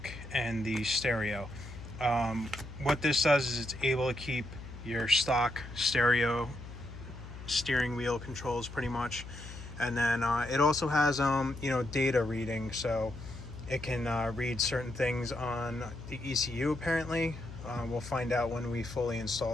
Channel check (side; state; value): left; noise; hum, 12 dB below the sound